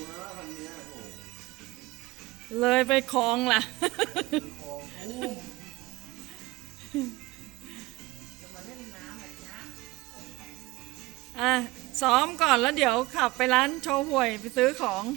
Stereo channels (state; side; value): quieter; left; 20.6 dB